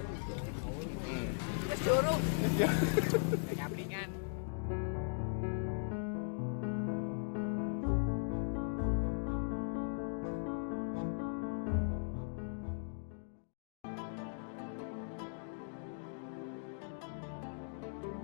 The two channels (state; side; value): silent; right; digital silence